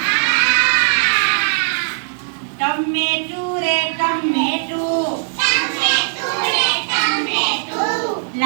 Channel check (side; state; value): left; silent; digital silence